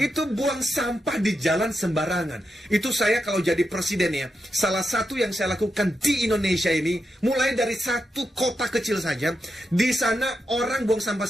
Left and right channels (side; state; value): both; normal; correlation 0.86